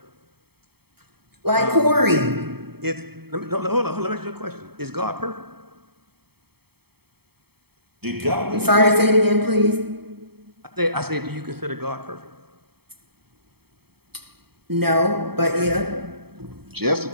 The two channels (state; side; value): late; left; 0.96 ms